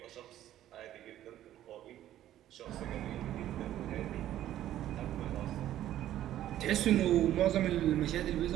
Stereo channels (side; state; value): left; quieter; 12.6 dB